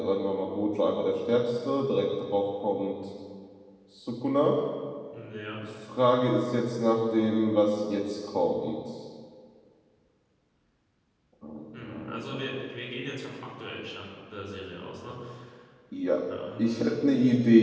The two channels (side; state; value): both; identical; correlation 1.00